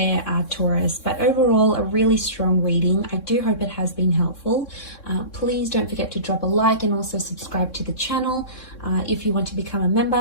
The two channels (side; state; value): right; late; 3.6 ms